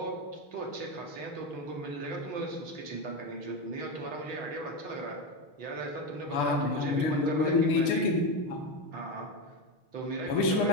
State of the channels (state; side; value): late; right; 6.8 ms